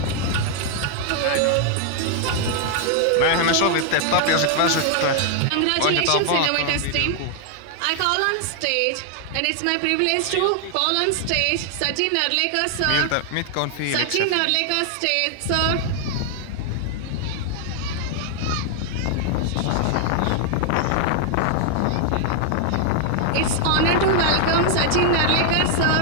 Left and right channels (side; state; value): both; different; correlation 0.00